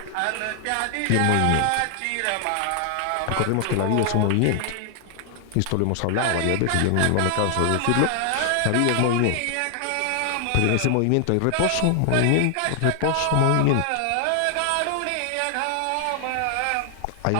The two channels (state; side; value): different; both; correlation 0.00